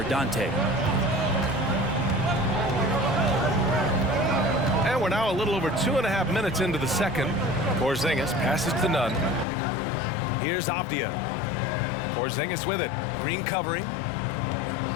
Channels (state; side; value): drops out; right; at 9.5 s